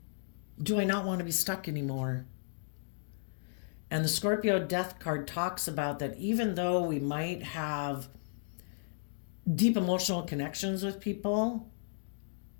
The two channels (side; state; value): right; silent; digital silence